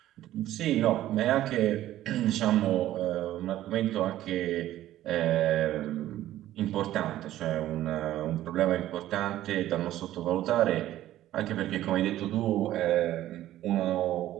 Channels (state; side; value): quieter; left; 13.7 dB